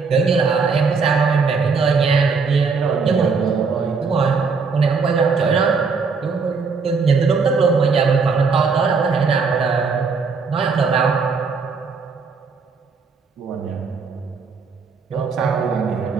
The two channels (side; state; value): left; quieter; 5.0 dB